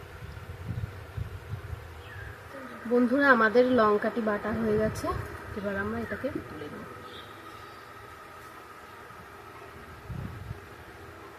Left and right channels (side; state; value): both; identical; correlation 1.00